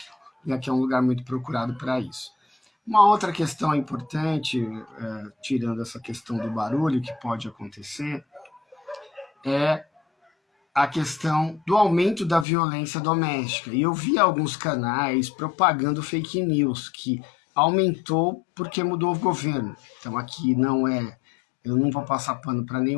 E aqui é um lugar muito procurado para isso. Uma outra questão importante, tirando essa questão do barulho que pode acontecer, é a questão do aumento da violência doméstica. E eu vi alguns canais propagando fake news, que aumentou porque mudou o governo. Então aqui eu não vou passar pano para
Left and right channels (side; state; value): right; drops out; at 12.5 s